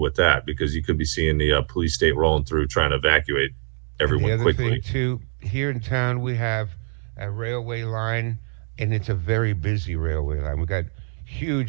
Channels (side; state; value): left; silent; 56 dB below the other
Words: with that because you could be seeing the police state rolling through trying to evacuate And everyone the other quickly. thing too, here in town we have a railway line, and it's a very busy railway line. We've got